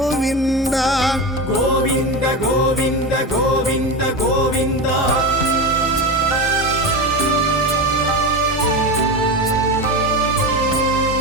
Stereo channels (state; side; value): normal; both; correlation 0.21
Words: ಗೋವಿಂದ ಗೋವಿಂದ ಗೋವಿಂದ ಗೋವಿಂದ